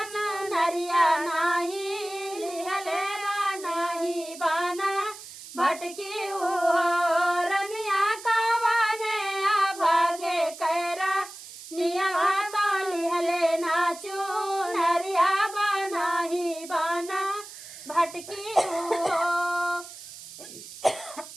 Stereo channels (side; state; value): right; noise; hiss, 15 dB below the sound